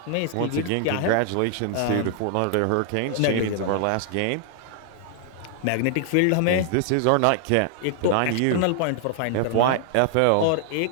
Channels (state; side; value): different; both; correlation 0.00